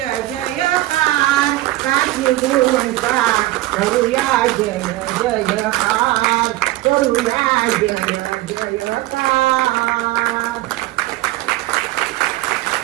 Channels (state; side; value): quieter; left; 17.2 dB